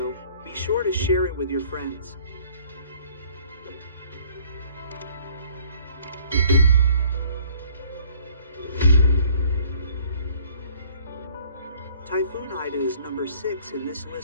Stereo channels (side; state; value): both; inverted; correlation -0.57